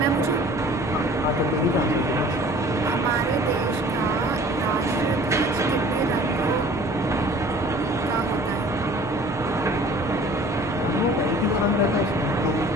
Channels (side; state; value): both; normal; correlation 0.49